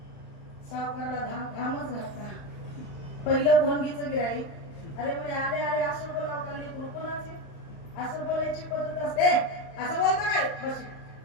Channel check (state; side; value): late; right; 35 ms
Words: सावकारला घामच घातला. पहिलं भोंडगीचं गिराईक. अरे म्हणे आले आले असं बोलावं का लेकरू? कोणाचे असं बोलायची पद्धत असते? असं बोलता काय?